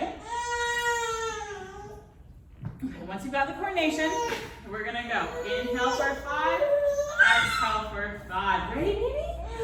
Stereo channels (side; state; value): both; identical; correlation 1.00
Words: Once you've got the coordination, we're going to go. Inhale for 5. Exhale for 5. Ready, baby?